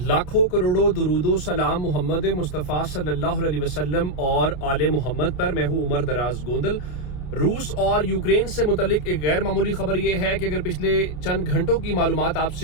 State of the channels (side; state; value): right; late; 30 ms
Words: करोड़ों दुरूदो सलाम मोहम्मद मुस्तफ़ा सल्लल्लाहु अलैहि वसल्लम और आले मोहम्मद पर। मैं हूँ उमर दराज गोंदल। रूस और यूक्रेन से मुतल्लिक एक गैर मामूली खबर यह है कि अगर पिछले चंद घंटों की मालूमात